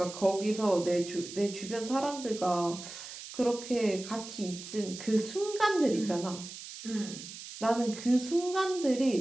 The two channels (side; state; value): right; noise; hiss, 12 dB below the sound